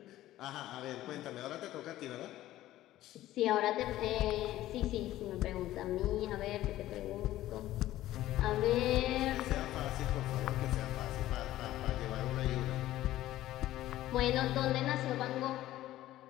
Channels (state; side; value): quieter; right; 14.7 dB